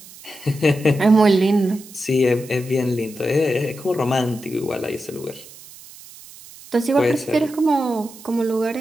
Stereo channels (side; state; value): right; noise; hiss, 19 dB below the sound